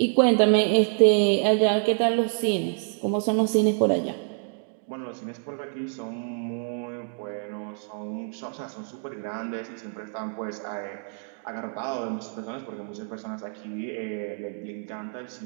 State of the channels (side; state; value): left; silent; 60 dB below the other